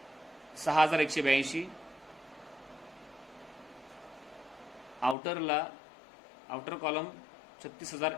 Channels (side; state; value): right; drops out; at 5.2 s